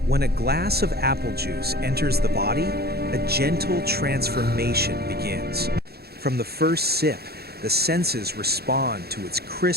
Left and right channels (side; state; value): left; late; 0.46 ms